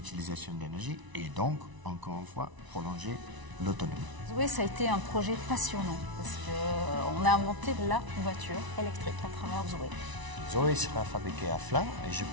d'énergie et donc, encore une fois, prolonger l'autonomie. Zoé, ça a été un projet passionnant parce qu'on a inventé la voiture électrique à travers Zoé. Zoé sera fabriquée à Flins et je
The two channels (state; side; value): late; left; 1.0 ms